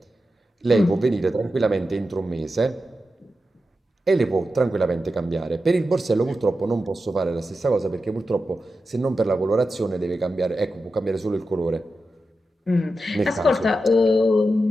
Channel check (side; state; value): both; normal; correlation 0.90